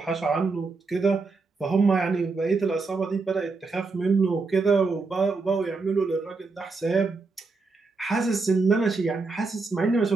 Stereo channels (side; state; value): left; quieter; 4.0 dB